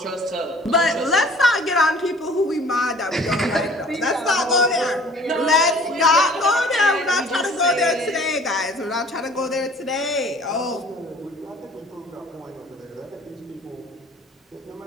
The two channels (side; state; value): both; normal; correlation 0.51